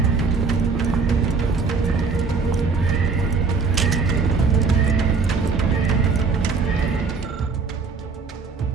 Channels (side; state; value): left; quieter; 4.8 dB